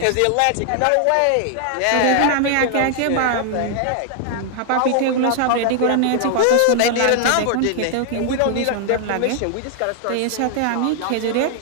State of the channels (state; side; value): different; both; correlation 0.00